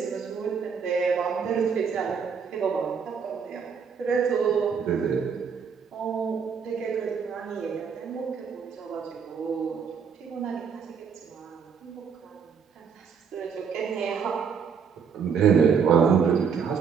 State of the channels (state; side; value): quieter; left; 6.5 dB